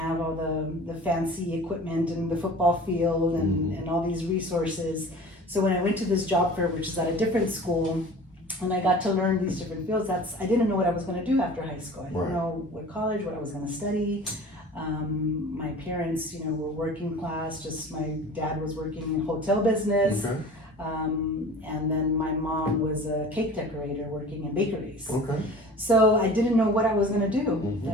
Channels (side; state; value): both; normal; correlation 0.41